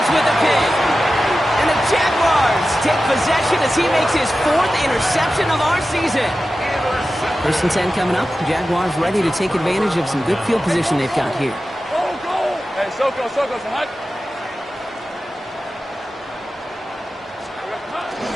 with a pick. And the Jaguars take possession as he makes his 4th interception of our season. 1st and 10 coming up. The Jaguars ready to take advantage of some good field position they've got here. Hey, Soko, some hot.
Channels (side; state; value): both; normal; correlation 0.93